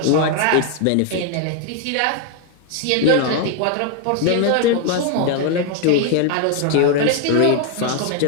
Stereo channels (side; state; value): both; different; correlation 0.01